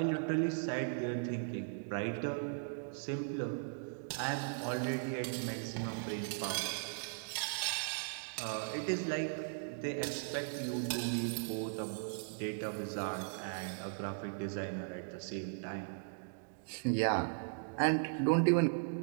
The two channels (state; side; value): silent; left; digital silence